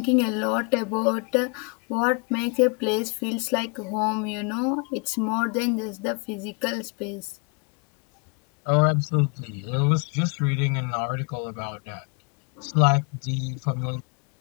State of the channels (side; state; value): right; quieter; 33.6 dB